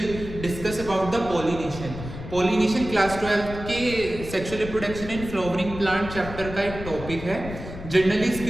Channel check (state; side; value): noise; left; rumble, 10 dB below the sound